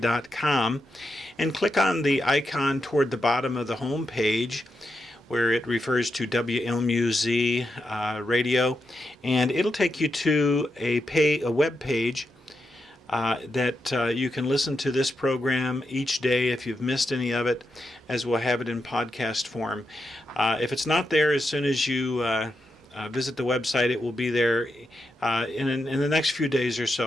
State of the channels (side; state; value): both; normal; correlation 0.85